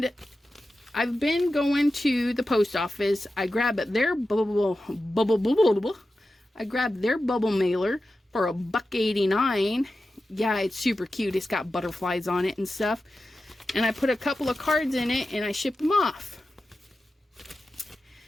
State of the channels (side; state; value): both; normal; correlation 0.93